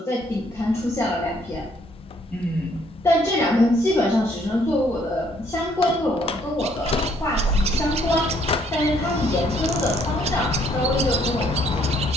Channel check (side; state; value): both; normal; correlation 0.66